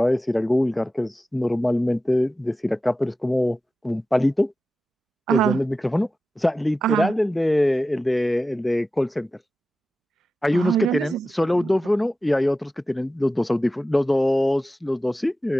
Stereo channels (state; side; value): normal; both; correlation 0.93